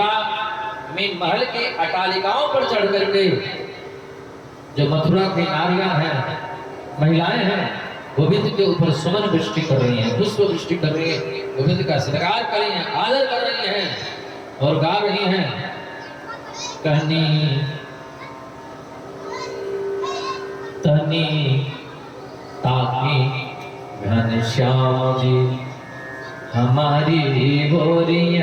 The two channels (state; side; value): identical; both; correlation 1.00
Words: में महल के अटालिकाओं पर चढ़ करके जो मथुरा की नारियां हैं, महिलाएं हैं, गोविंद के ऊपर सुमन वृष्टि कर रही हैं, पुष्प वृष्टि कर रही हैं, गोविंद का श्रृंगार कर रही हैं, आदर कर रही हैं और गा रही हैं। कहनी तनी ताकी घनश्याम जी हमारी